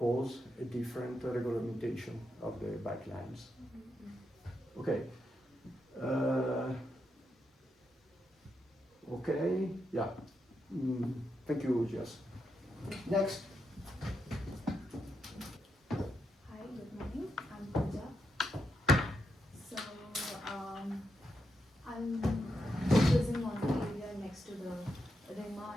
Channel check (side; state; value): both; normal; correlation 0.83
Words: a different regulation of the bike lines. Okay. Okay, yeah. Thank you, Jess. Next. Hi, good morning. I'm Pooja. So, I'm focusing on the area next to the RAHDARI